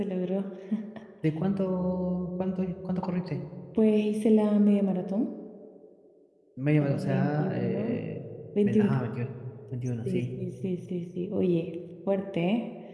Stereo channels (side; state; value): both; identical; correlation 1.00